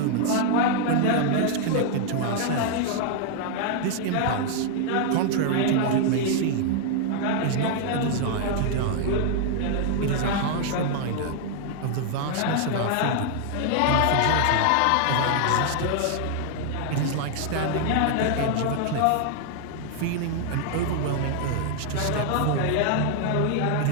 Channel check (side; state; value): both; different; correlation 0.00